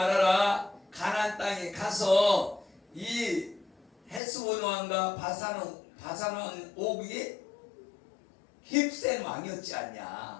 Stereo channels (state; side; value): drops out; right; at 4.2 s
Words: 가나안 땅에 가서 이 헤스본 왕과 바산 왕 옥이 힘센 왕이었지